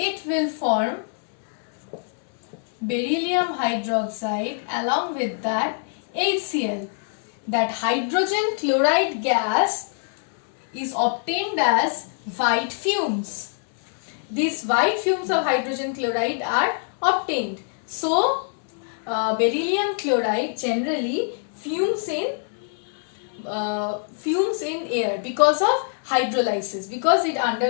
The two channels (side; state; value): right; silent; 62 dB below the other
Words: will form beryllium hydroxide, along with that HCl. That hydrogen chloride gas is obtained as white fumes. These white fumes of hydrogen chloride are obtained. So beryllium chloride generally fumes in air because of hydrolysis, because it